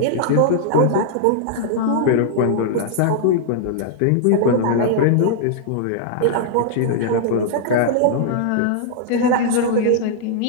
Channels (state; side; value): different; both; correlation -0.01